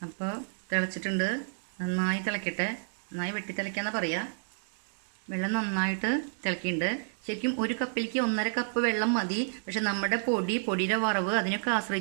അപ്പോൾ തിളച്ചിട്ടുണ്ട്. നന്നായി തിളയ്ക്കട്ടെ. നന്നായി വെട്ടി തിളയ്ക്കാന്നാണ് പറയുക. വെള്ളം നന്നായിട്ട് തിളക്കിയിട്ടുണ്ട്. ശരിക്കും 1 കപ്പിലേക്ക് 1.5 കപ്പ് വെള്ളം മതി. പക്ഷെ നമ്മുടെ പൊടിയുടെ വറവ് അതിനൊക്കെ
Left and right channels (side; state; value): left; silent; digital silence